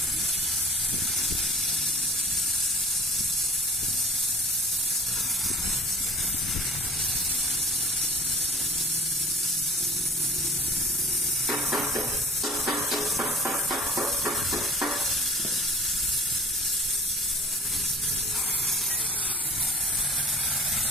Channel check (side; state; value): both; normal; correlation 0.44